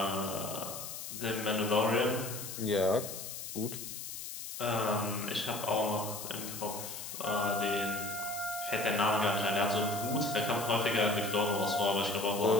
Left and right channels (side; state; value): left; noise; hiss, 8 dB below the sound